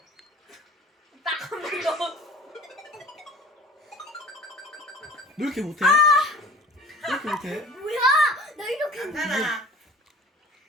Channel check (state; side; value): normal; both; correlation 0.43